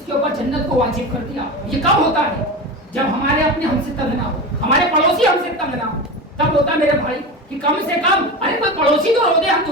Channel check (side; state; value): both; normal; correlation 0.25